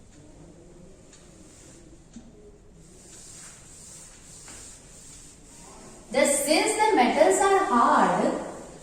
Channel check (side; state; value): both; identical; correlation 1.00